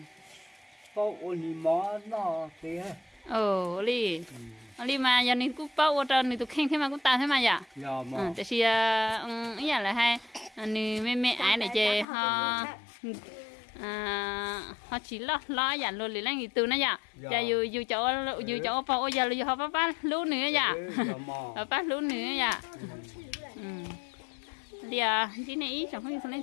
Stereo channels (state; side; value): drops out; right; at 12.1 s